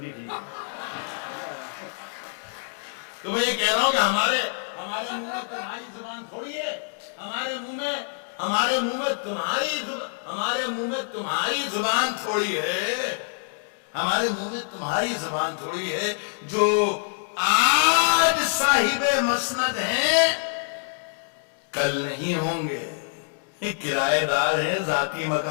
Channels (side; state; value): right; silent; digital silence